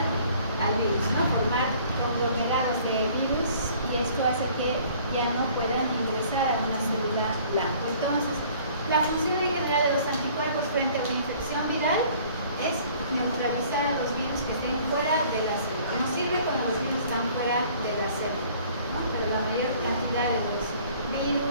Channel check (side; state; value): both; inverted; correlation -0.54